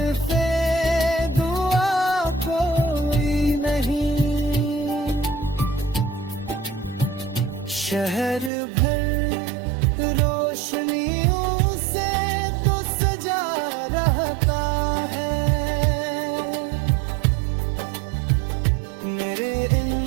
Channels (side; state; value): left; drops out; at 8.5 s